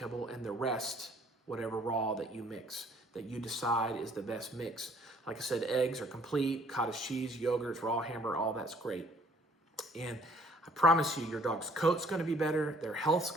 and the rest, whatever raw that you mix, that you decide is the best mix. Like I said, eggs are complete, cottage cheese, yogurts, raw hamburger, all that's great. And I promise you, your dog's coat's gonna be better, their health's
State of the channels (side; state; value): both; normal; correlation 0.60